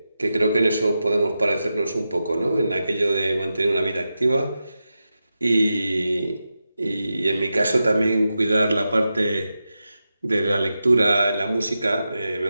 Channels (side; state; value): both; inverted; correlation -0.90